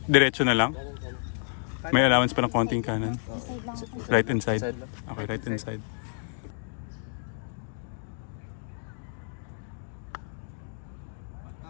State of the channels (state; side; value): silent; right; digital silence